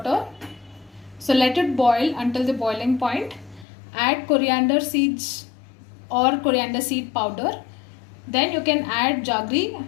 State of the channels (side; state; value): right; drops out; at 3.7 s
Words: So let it boil until the boiling point. Add coriander seeds or coriander seed powder. Then you can add jaggery